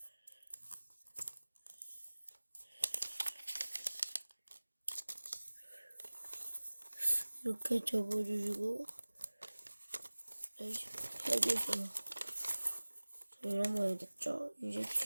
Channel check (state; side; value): inverted; both; correlation -1.00